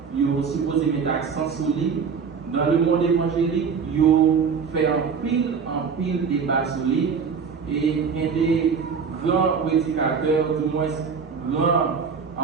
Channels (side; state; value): left; quieter; 6.0 dB